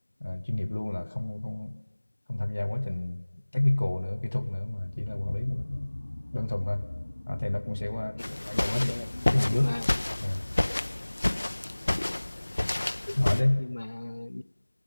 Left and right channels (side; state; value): both; inverted; correlation -1.00